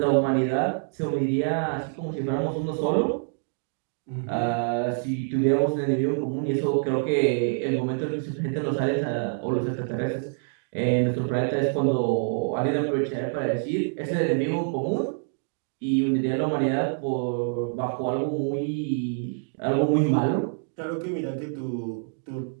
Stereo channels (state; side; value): silent; left; digital silence